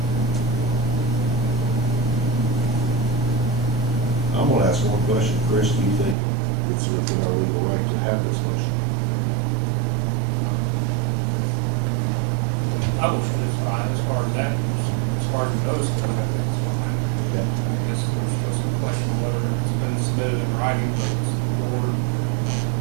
I'm gonna ask one question. Chris, do you think it's within our legal right to have this motion? publishing is fine as far as that, as far as the notice goes, I think it's fine. Okay. I guess there's still some question of whether it's been submitted in writing, but it's the board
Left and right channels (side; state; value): left; drops out; at 6.2 s